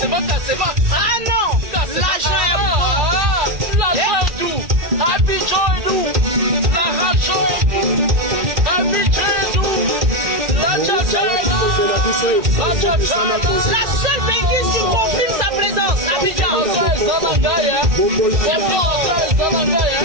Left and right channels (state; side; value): late; left; 1.8 ms